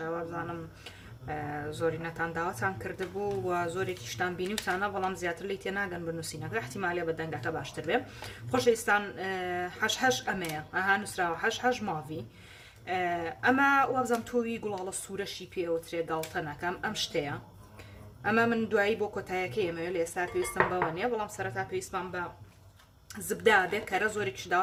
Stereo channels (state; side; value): identical; both; correlation 1.00